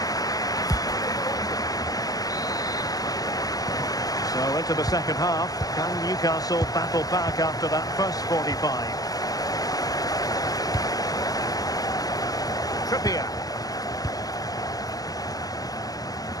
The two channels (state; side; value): late; right; 0.18 ms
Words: So into the second half, can Newcastle battle back after that first 45? Trippier.